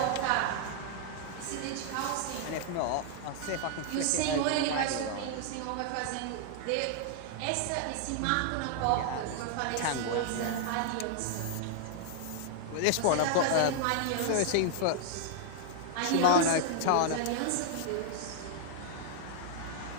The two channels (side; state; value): both; different; correlation -0.01